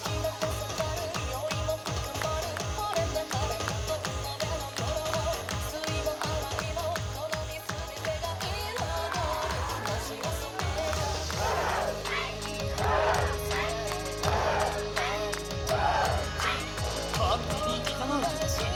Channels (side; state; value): both; identical; correlation 1.00